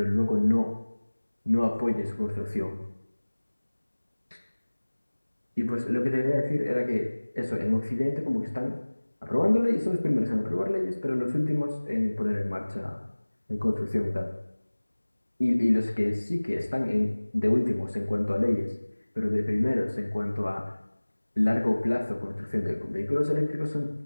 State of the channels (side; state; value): both; inverted; correlation -1.00